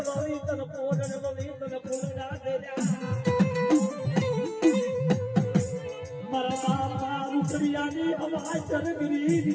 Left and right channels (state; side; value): identical; both; correlation 1.00